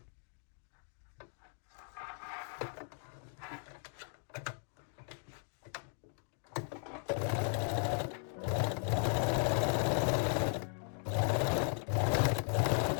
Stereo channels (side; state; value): right; silent; 53 dB below the other